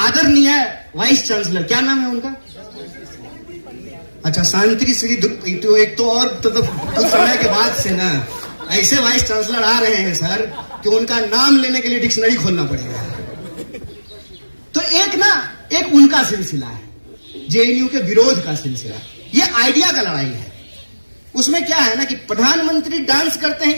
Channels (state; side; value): inverted; both; correlation -1.00